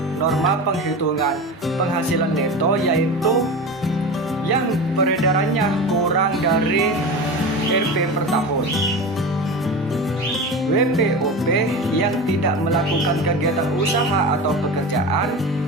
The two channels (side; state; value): both; normal; correlation 0.28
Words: norma penghitungan penghasilan neto, yaitu yang peredarannya kurang dari Rp per tahun. WPOP yang tidak melakukan kegiatan usaha atau pekerjaan